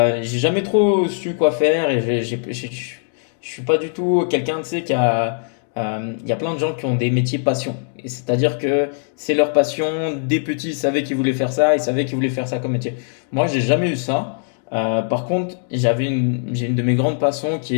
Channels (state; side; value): silent; right; digital silence